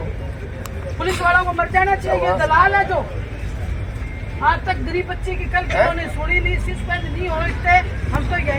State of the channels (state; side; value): identical; both; correlation 1.00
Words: पुलिस वालों को मर जाना चाहिए। ये दलाल है जो आज तक गरीब बच्ची की कल उन्होंने सुनी नहीं, सस्पेंड नहीं हो सकते। हम तो